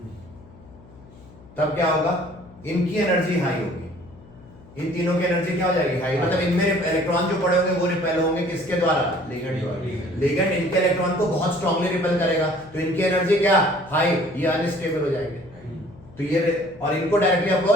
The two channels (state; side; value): noise; left; hum, 22 dB below the sound